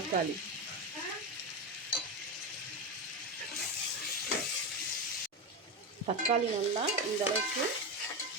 தக்காளி நல்லா இந்த அளவுக்கு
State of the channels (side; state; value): both; normal; correlation 0.16